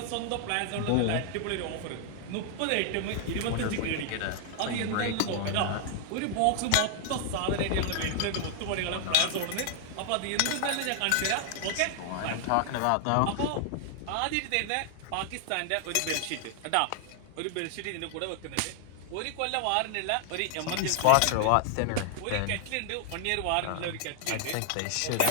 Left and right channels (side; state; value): both; different; correlation 0.00